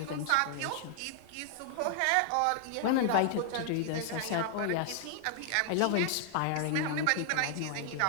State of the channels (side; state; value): both; different; correlation 0.00